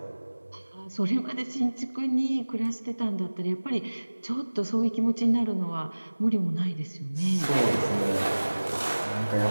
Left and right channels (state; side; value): inverted; both; correlation -1.00